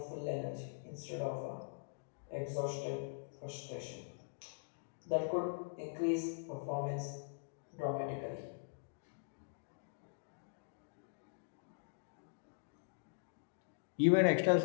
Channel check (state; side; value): silent; right; digital silence